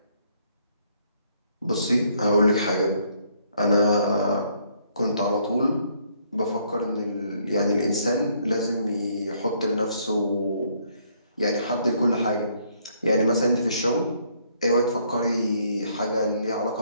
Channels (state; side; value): inverted; both; correlation -0.68